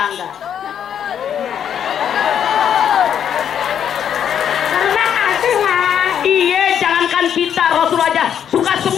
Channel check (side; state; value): right; quieter; 8.9 dB